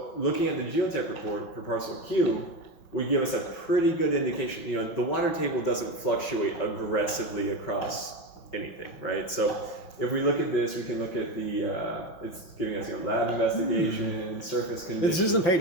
looking at the geotech report for parcel Q would give us a pretty good indication. The water table doesn't fluctuate aggressively across anything, right? So if we look at this, we can look at the, it's giving us lab investigation, surface conditions. This isn't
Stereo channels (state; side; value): late; right; 5.3 ms